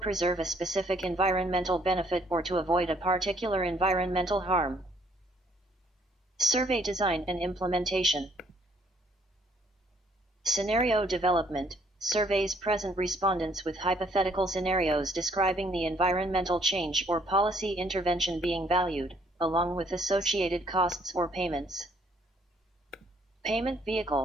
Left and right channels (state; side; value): normal; both; correlation 0.65